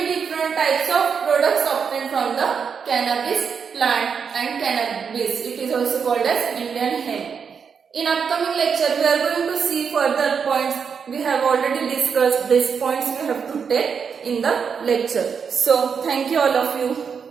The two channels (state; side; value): quieter; left; 6.4 dB